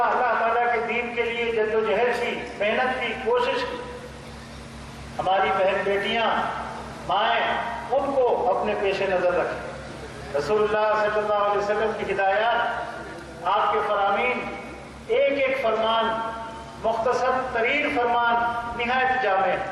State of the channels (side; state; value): both; identical; correlation 1.00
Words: اللہ تعالیٰ کے دین کے لیے جد و جہد کی، محنت کی، کوشش کی. ہماری بہن بیٹیاں، مائیں، ان کو اپنے پیش نظر رکھیں. رسول اللہ صلی اللہ علیہ وسلم کی ہدایات، آپ کے فرامین، ایک ایک فرمان، مختصر ترین فرمان نہایت جامع ہے.